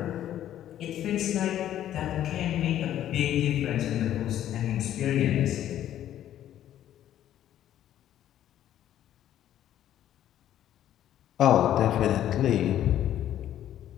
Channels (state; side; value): quieter; right; 11.7 dB